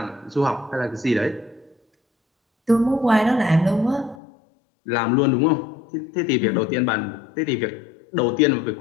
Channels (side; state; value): right; drops out; at 4.2 s